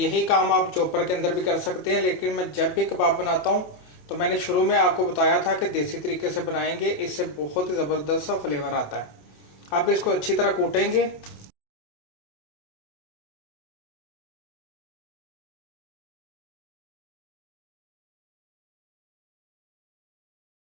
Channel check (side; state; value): right; late; 28 ms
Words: काम आप चॉपर के अंदर भी कर सकते हैं, लेकिन मैं जब भी कबाब बनाता हूँ तो मैंने शुरू में आपको बताया था कि देसी तरीके से बनाएंगे, इससे बहुत ही ज़बरदस्त सा फ्लेवर आता है। अब इसको अच्छी तरह कूटेंगे।